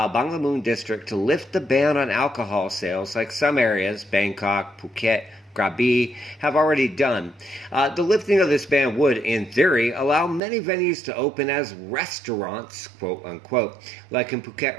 Banglamun District to lift the ban on alcohol sales like some areas, Bangkok, Phuket, Krabi, have already done. The lifting of this ban would, in theory, allow many venues to open as restaurants, quote unquote, like in Phuket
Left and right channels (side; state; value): left; drops out; at 10.4 s